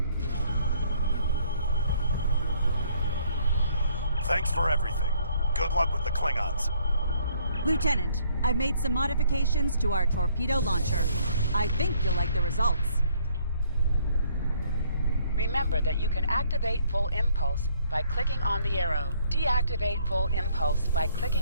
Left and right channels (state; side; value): inverted; both; correlation -0.65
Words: Thanks for everything. Good luck with the Klingons. Lieutenant, I've made some modifications to our torpedo launcher. I think you'll like the results. Remember that you can activate full impulse by clicking on the arrow. Deactivate full impulse by